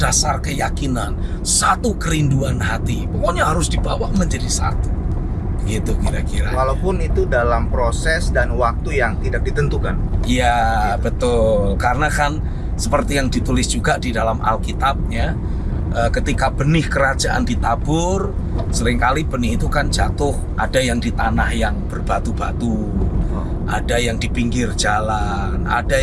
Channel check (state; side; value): identical; both; correlation 1.00